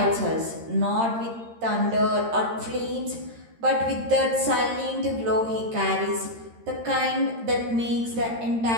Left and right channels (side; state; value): left; late; 13 ms